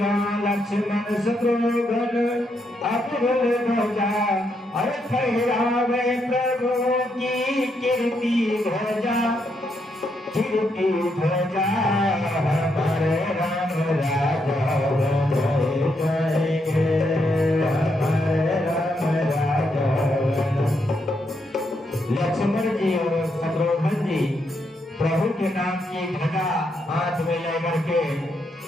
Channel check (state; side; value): normal; both; correlation 0.79